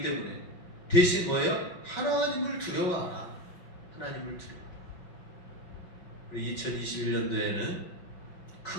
때문에 대신 뭐예요? 하나님을 두려워하라. 하나님을 두려워하라. 우리 2021년도에는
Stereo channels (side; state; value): right; late; 5.3 ms